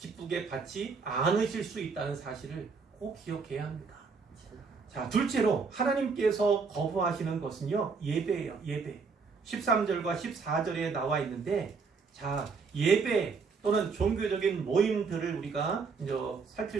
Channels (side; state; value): left; quieter; 5.0 dB